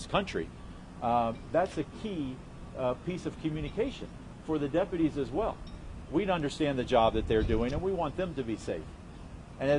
country, that's a key piece of communication for the deputies as well. We understand the job that they're doing, and we want them to be safe.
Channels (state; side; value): identical; both; correlation 1.00